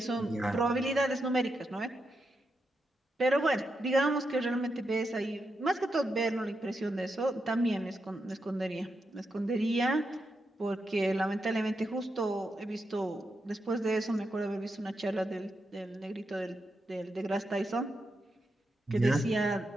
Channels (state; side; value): normal; both; correlation 0.85